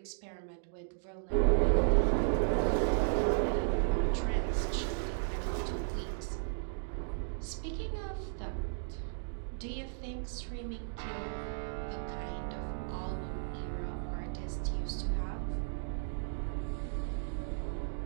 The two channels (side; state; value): left; silent; digital silence